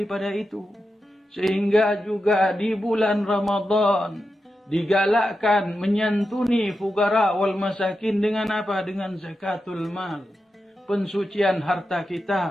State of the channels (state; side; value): normal; both; correlation 0.89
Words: itu. Sehingga juga di bulan Ramadan digalakkan menyantuni fugara wal masakin dengan apa? Dengan zakatul mal. Pensucian harta